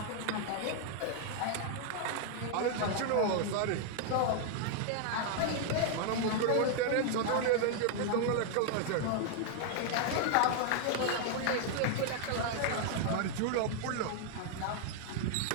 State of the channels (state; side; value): different; both; correlation 0.00